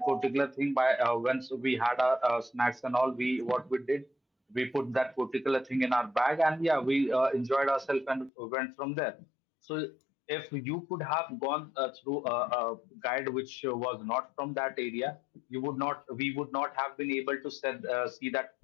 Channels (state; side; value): drops out; right; at 8.3 s